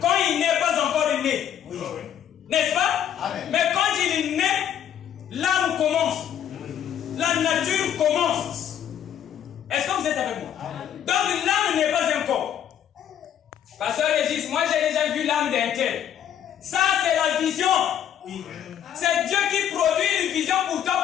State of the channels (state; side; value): quieter; right; 9.9 dB